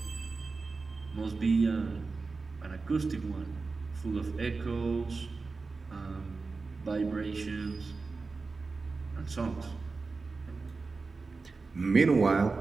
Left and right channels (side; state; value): left; quieter; 4.1 dB